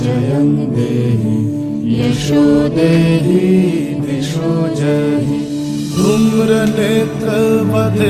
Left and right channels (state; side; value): identical; both; correlation 1.00